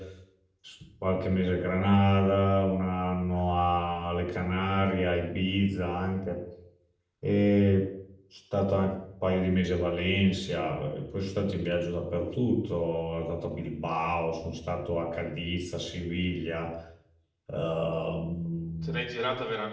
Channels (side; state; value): both; identical; correlation 1.00